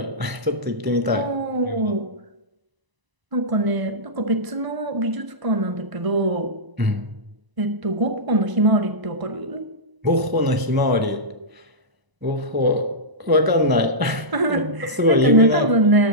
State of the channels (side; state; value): left; late; 1.0 ms